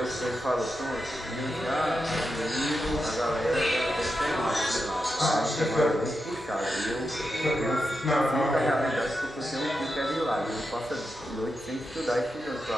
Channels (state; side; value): normal; both; correlation 0.88